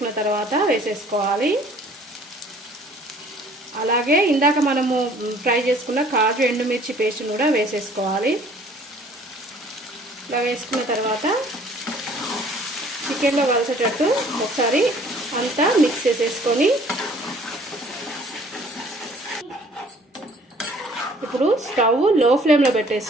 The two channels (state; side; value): normal; both; correlation 0.55